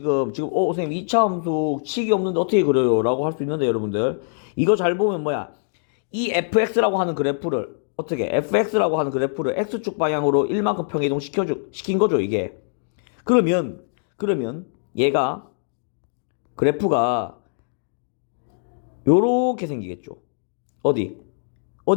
선생님 2차 함수 식이 없는데 어떻게 그려요? 라고 할 수 있는데 여러분들 이거 잘 보면 뭐야? 이 fx라고 하는 그래프를 어떻게 fx라고 하는 그래프를 x축 방향으로 1만큼 평이동 시킨 거죠, 이게. 그러면 얘가 그래프가 요렇게 생기겠죠.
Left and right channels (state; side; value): silent; right; digital silence